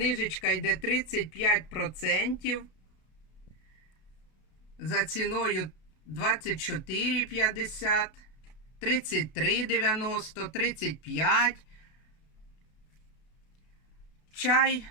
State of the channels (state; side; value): late; right; 32 ms